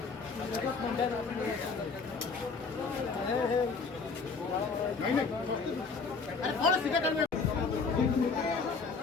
नहीं नहीं अरे थोड़ा सीधा कर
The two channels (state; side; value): quieter; right; 4.7 dB